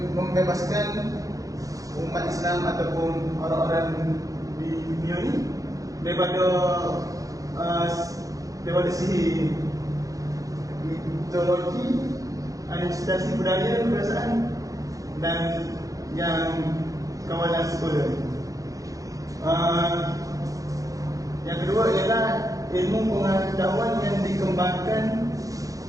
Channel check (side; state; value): left; late; 0.17 ms